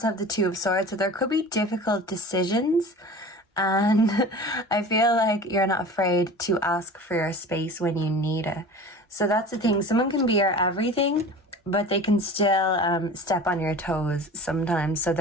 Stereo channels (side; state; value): both; normal; correlation 0.38